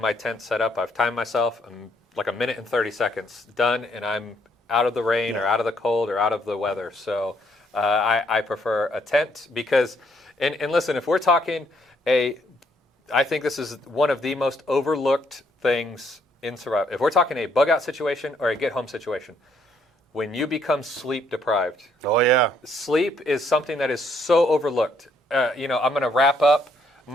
tent set up. I've timed myself. I'm like 1 minute and 30 seconds done, and I'm out of the rain or out of the cold or out of the weather. So I prefer a tent because, and listen, if we're talking I think this is one of the most overlooked things in survival. If we're talking a bug out situation or a get home situation, when you become sleep deprived. Oh yeah. Sleep is something that is so overlooked. You know, I'm going to wrap up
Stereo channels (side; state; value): both; normal; correlation 0.70